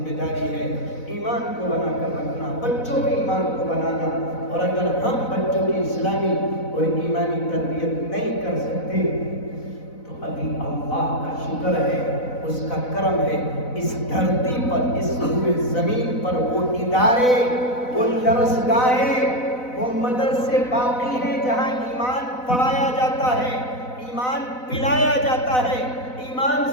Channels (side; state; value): right; late; 4.0 ms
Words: داری ہے، ایمان کو بنا کر رکھنا، بچوں کے ایمان کو بنانا۔ اور اگر ہم بچوں کی اسلامی اور ایمانی تربیت نہیں کر سکتے تو ابھی اللہ کا شکر ہے، اس کا کرم ہے، اس دھرتی پر، اس روئے زمین پر وہ ادارے، وہ درسگاہیں، وہ مدرسے باقی ہیں جہاں ایمان پڑھایا جاتا ہے، ایمان پلایا جاتا ہے، ایمان